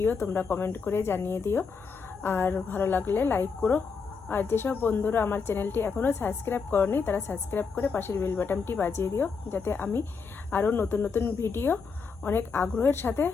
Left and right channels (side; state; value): right; quieter; 5.3 dB